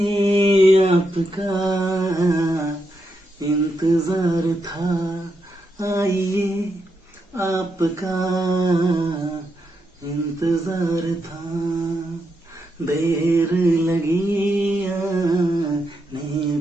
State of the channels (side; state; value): both; normal; correlation 0.83